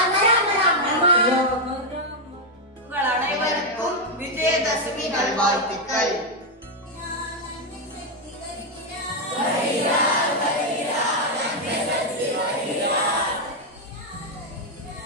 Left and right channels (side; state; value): both; normal; correlation 0.01